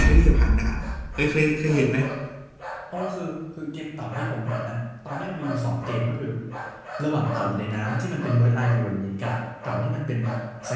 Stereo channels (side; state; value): both; identical; correlation 1.00